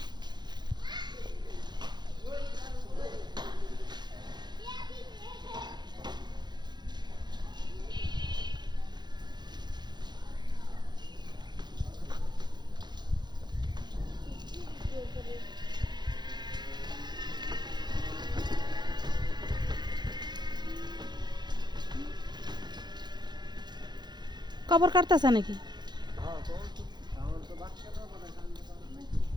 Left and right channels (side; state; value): left; late; 0.21 ms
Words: কবর কাটতেছে নাকি?